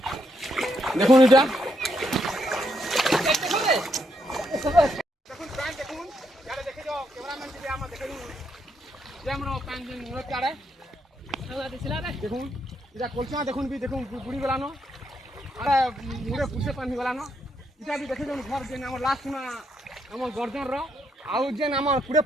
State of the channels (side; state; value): both; normal; correlation 0.78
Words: देखुन इटा দেখুন এটা কলচা দেখুন বি দেখুন বুড়ি গলানো আরে মুড়ে পুষে পানি গলানো এটা বি দেখে দেখুন ঘর যেন আমার লাস্ট না আমার গর্জন র আউ যেন আমার পুরে